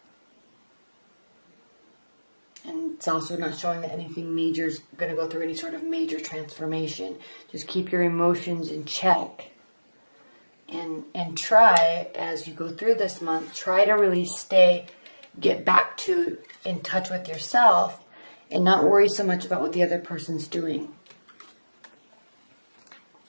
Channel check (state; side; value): inverted; both; correlation -1.00